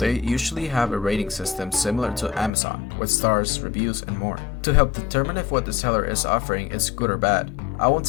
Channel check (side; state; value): right; drops out; at 2.5 s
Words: usually have a rating system similar to Amazon, with stars, reviews, and more, to help determine if what the seller is offering is good or bad. I won't